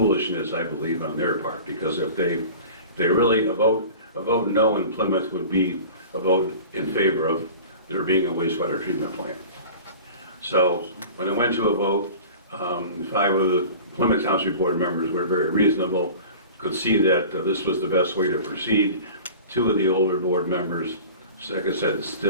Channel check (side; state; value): both; inverted; correlation -0.39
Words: I believe, on their part. Because if they really, a vote no in Plymouth would be a vote in favor of there being a wastewater treatment plant. So when it went to a vote, 5 of the Plymouth Township board members were very reasonable, could see that this was the best way to proceed. 2 of the older board members, like I said,